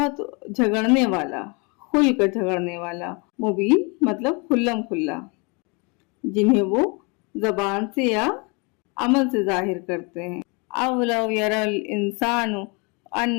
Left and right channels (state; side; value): quieter; right; 31.1 dB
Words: جھگڑنے والا، کھل کر جھگڑنے والا، مبین مطلب کھلم کھلا، جنہیں وہ زبان سے یا عمل سے ظاہر کرتے ہیں۔ اَوْلَوْ يَرَى الْإِنسَانُ